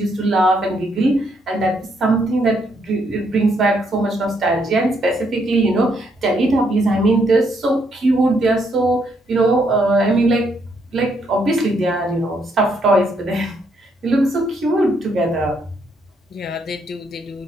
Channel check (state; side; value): normal; both; correlation 0.74